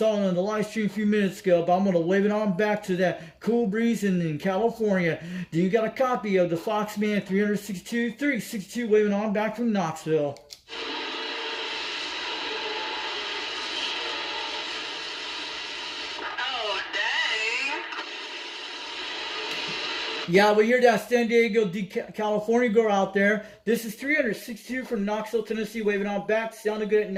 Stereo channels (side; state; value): both; identical; correlation 1.00